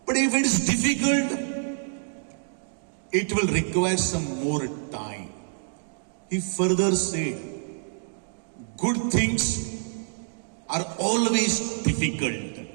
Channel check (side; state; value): left; silent; digital silence